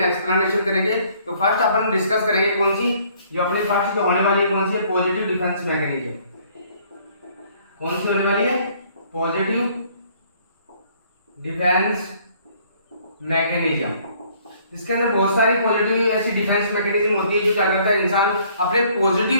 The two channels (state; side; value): inverted; both; correlation -0.61